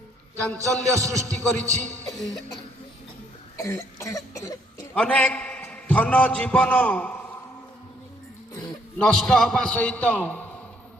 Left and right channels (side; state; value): both; normal; correlation 0.68